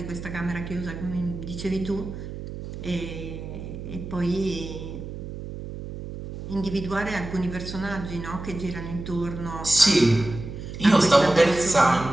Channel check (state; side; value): noise; right; hum, 9 dB below the sound